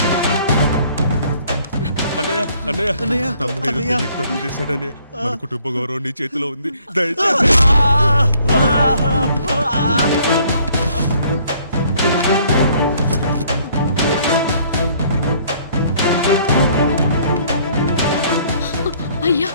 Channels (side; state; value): both; inverted; correlation -0.61